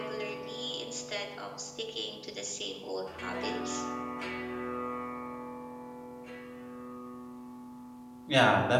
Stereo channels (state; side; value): identical; both; correlation 1.00